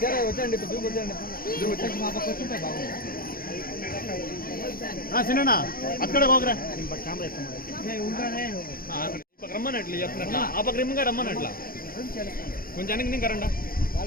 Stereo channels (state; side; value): late; right; 0.42 ms